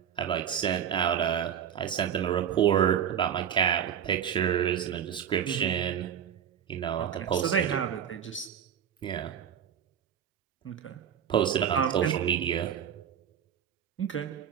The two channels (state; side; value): quieter; left; 8.9 dB